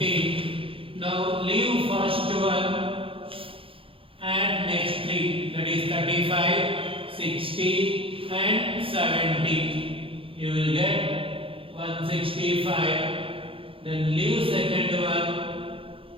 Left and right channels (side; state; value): left; late; 0.26 ms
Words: Now leave first one, add next 3, that is 35, 60 and 70. You will get 165. Then leave second one,